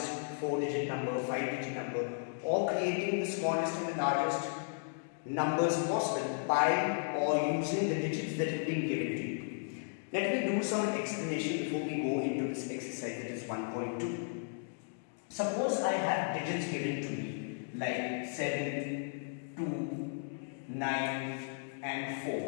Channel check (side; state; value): right; silent; digital silence